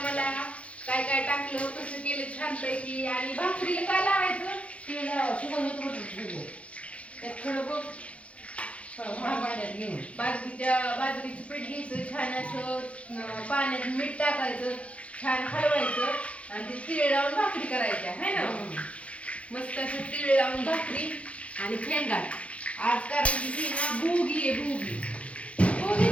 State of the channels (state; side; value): late; right; 0.063 ms